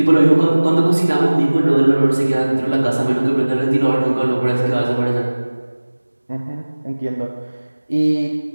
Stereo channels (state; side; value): inverted; both; correlation -1.00